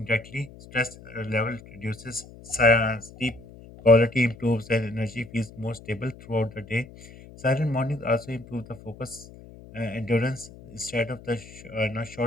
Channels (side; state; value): left; noise; hum, 19 dB below the sound